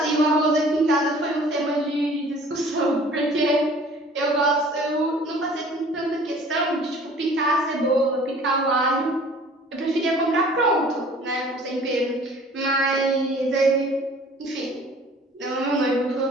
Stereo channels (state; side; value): normal; both; correlation 0.50